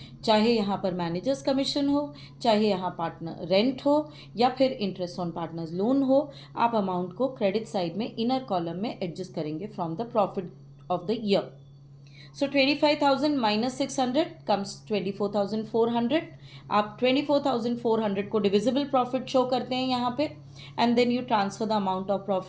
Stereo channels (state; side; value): identical; both; correlation 1.00